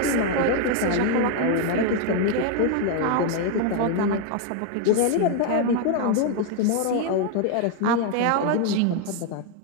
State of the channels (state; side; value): different; both; correlation 0.00